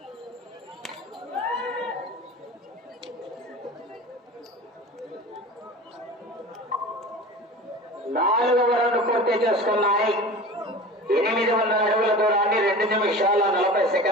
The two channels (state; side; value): normal; both; correlation 0.35